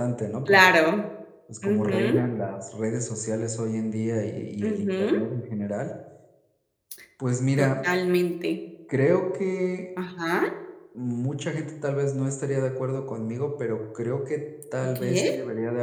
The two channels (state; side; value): identical; both; correlation 1.00